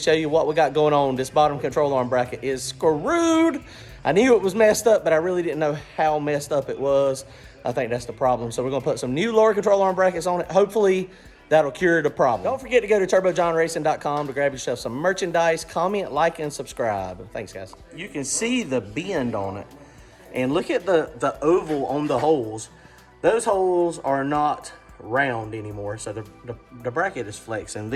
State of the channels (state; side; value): identical; both; correlation 1.00